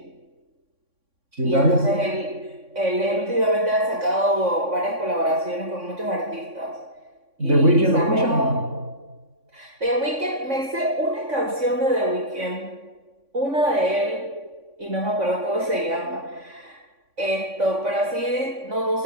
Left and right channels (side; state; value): left; late; 3.6 ms